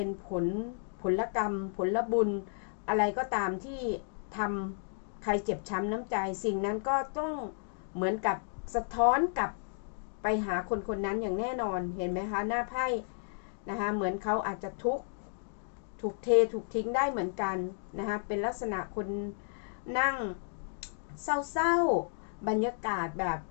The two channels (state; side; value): silent; right; digital silence